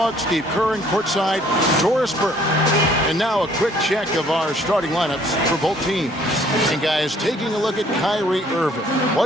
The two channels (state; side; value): normal; both; correlation 0.60